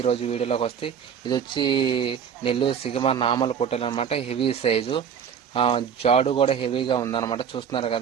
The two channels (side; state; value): left; quieter; 7.7 dB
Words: ఈరోజు వీడియోలోకి వస్తే ఇది వచ్చి నెల్లూరు సిగమ నామల పొట్టేలు అనమాట. హెవీ సైజు, జాడు కూడా హెవీగా ఉందన్నమాట. చూస్తున్నారు